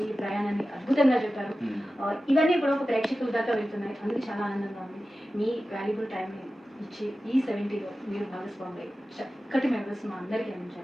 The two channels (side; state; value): both; normal; correlation 0.94